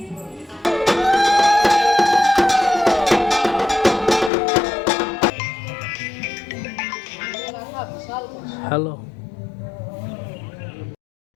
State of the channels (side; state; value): right; drops out; at 4.3 s